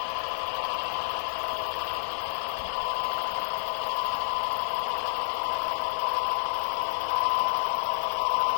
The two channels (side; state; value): right; silent; digital silence